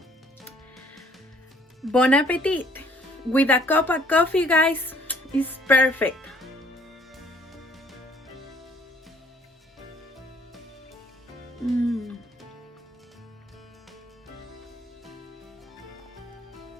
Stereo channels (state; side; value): normal; both; correlation 0.60